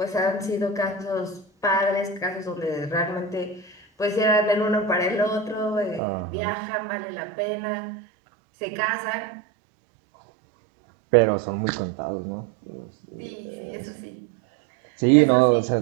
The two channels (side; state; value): left; drops out; at 6.0 s